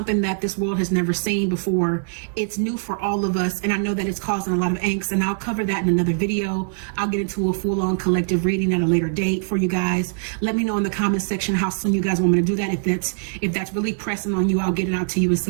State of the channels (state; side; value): silent; left; digital silence